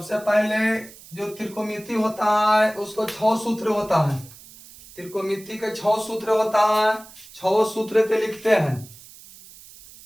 पहले जो त्रिकोणमिति होता है उसको 6 सूत्र होता है। त्रिकोणमिति के 6 सूत्र होता है, 6 सूत्र के लिखते हैं।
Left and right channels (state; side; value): noise; right; hiss, 20 dB below the sound